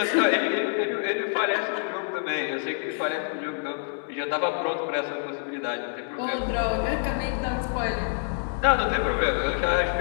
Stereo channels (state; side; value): silent; right; 60 dB below the other